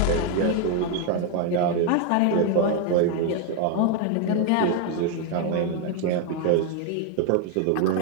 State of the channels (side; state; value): both; different; correlation 0.01